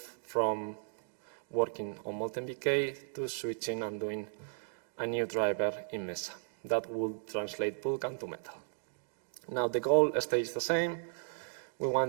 from working on MoltenBK to switching and doing a new driver in Mesa that will translate Vulkan to Metal. Now the goal stays the same. We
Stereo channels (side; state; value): left; silent; digital silence